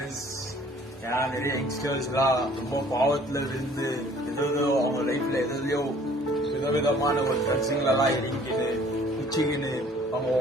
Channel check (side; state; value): both; normal; correlation 0.55